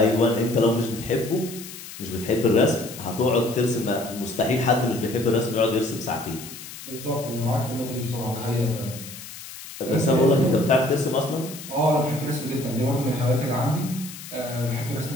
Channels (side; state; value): left; noise; hiss, 13 dB below the sound